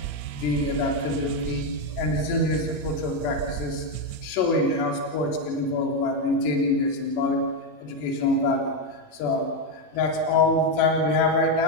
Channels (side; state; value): right; late; 14 ms